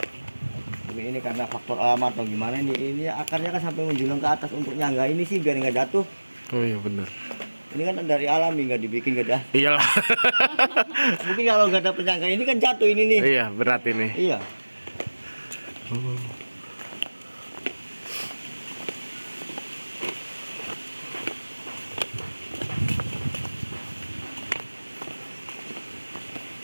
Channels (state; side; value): inverted; both; correlation -1.00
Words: Tapi ini karena faktor alam atau gimana ini akarnya kan sampai menjulang ke atas untuk nyangga ini sih biar nggak jatuh. Oh iya benar. Ini kan dari alami nggak dibikin nggak ada. Iyalah. Mungkin kalau nggak ada penyangga ini kan jatuh ini nih. Iya berat ini. Iya.